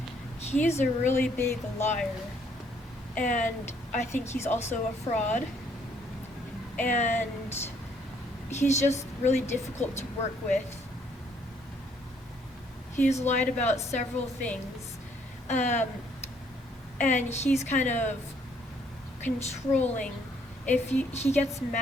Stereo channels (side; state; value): both; normal; correlation 0.66